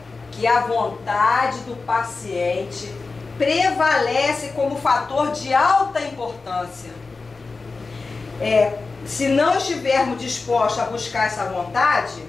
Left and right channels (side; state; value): right; quieter; 4.0 dB